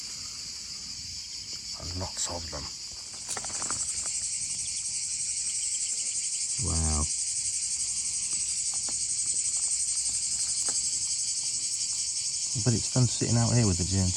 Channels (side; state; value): both; identical; correlation 1.00